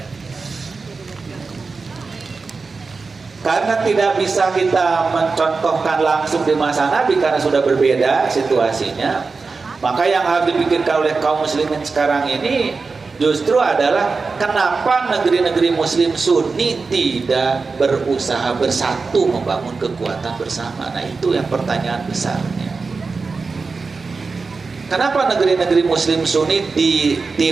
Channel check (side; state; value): left; quieter; 4.4 dB